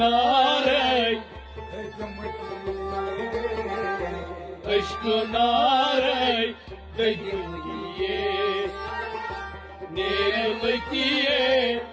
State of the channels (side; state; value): both; identical; correlation 1.00